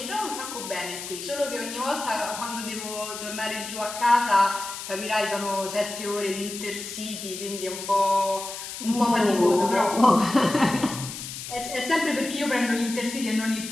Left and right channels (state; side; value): noise; left; hiss, 9 dB below the sound